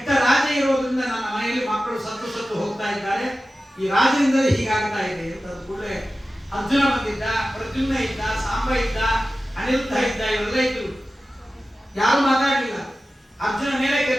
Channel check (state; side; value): normal; both; correlation 0.95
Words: ರಾಜ ಇರೋದ್ರಿಂದ ನನ್ನ ಮನೆಯಲ್ಲಿ ಮಕ್ಕಳು ಸತ್ತು ಸತ್ತು ಹೋಗ್ತಾ ಇದ್ದಾರೆ, ಈ ರಾಜನಿಂದಲೇ ಹೀಗಾಗ್ತಾ ಇದೆ ಅಂತ ಕೂಡಲೇ ಅರ್ಜುನ ಬಂದಿದ್ದ, ಪ್ರದ್ಯುಮ್ನ ಇದ್ದ, ಸಾಂಬ ಇದ್ದ, ಅನಿರುದ್ಧ ಇದ್ದ, ಇವರೆಲ್ಲ ಇದ್ರು. ಯಾರು ಮಾತಾಡಲಿಲ್ಲ. ಅರ್ಜುನ ಮೇಲೆ